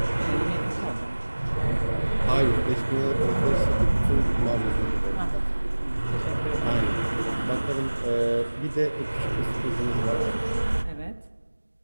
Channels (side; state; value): both; inverted; correlation -1.00